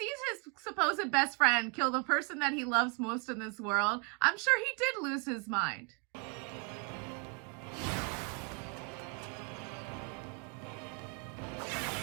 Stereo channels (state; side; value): quieter; left; 34.4 dB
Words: his supposed best friend kill the person that he loves most in this world, I'm sure he did lose his mind.